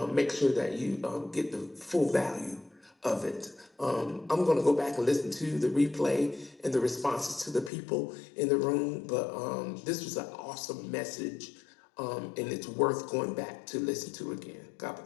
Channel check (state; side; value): drops out; right; at 7.7 s